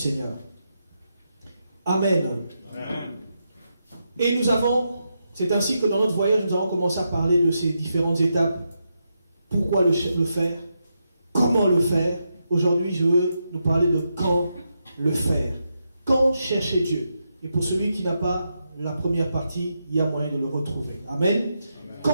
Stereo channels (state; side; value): inverted; both; correlation -0.84